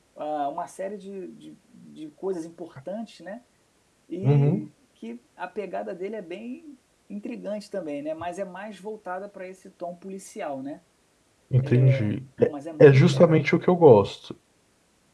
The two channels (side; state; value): both; identical; correlation 1.00